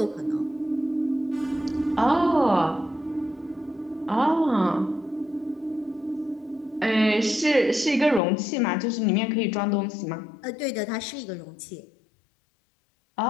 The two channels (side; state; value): right; drops out; at 8.2 s